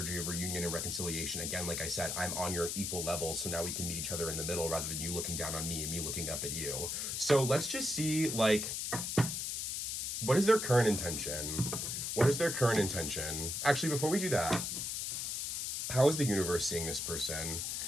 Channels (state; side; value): noise; left; hiss, 2 dB below the sound